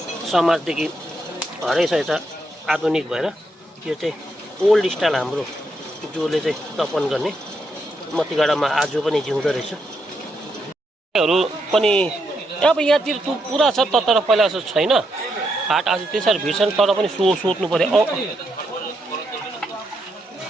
समाजदेखि हराइसकेछ आधुनिक भएर त्यो चाहिँ ओल्ड स्टाइल हाम्रो जसले चाहिँ तपन गर्ने मतिगाडामा आज पनि जिउँदो रहेछ हरू पनि अब यहाँतिर पुरा छ तर पहिला जस्तो छैन हाट आज त्यसरी भिड छन् तर पनि सोध्नु पर्यो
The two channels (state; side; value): normal; both; correlation 0.80